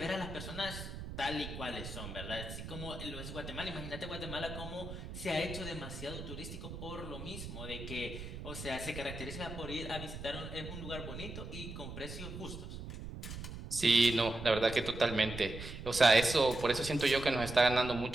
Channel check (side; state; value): right; noise; rumble, 9 dB below the sound